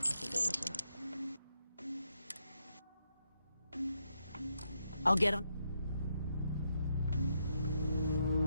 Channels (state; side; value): inverted; both; correlation -0.80